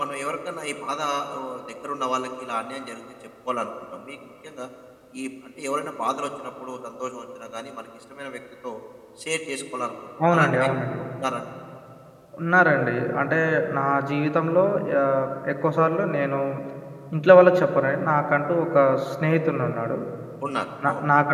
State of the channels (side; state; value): both; identical; correlation 1.00